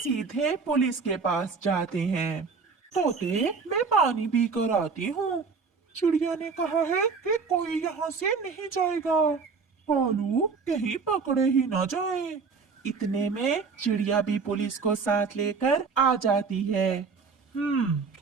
पुलिस के पास जाते हैं। तोते, मैं पानी पी कर आती हूँ। चिड़िया ने कहा है कि कोई यहाँ से नहीं जाएगा। कालू कहीं पकड़े ही ना जाए। इतने में चिड़िया भी पुलिस को साथ लेकर आ जाती है।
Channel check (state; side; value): quieter; left; 5.0 dB